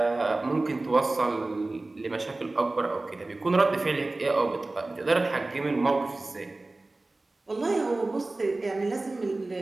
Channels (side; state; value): left; quieter; 3.0 dB